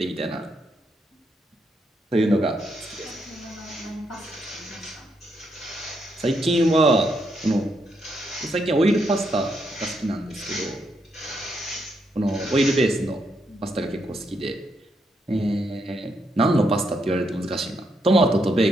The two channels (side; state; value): both; normal; correlation 0.78